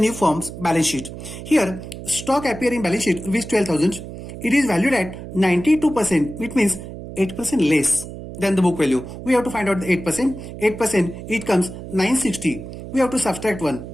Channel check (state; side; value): noise; right; hum, 11 dB below the sound